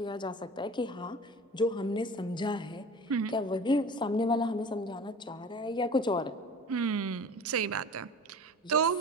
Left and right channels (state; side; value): normal; both; correlation 0.39